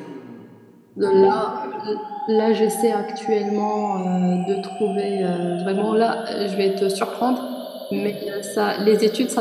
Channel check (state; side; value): identical; both; correlation 1.00